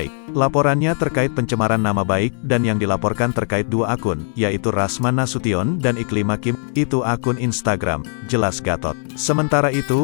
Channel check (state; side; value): silent; right; 63 dB below the other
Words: Laporannya terkait pencemaran nama baik, dan yang dilaporkan terkait dua akun, yaitu Rasman Nasution dan Iklima Kim, itu akun Instagram, jelas Gatot. Sementara